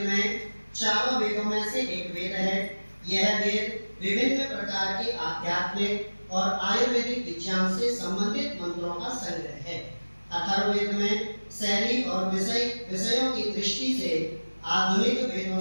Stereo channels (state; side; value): inverted; both; correlation -1.00